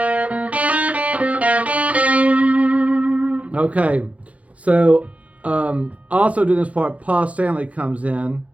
Okay, so also doing this part, Paul Stanley comes in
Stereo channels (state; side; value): late; left; 0.065 ms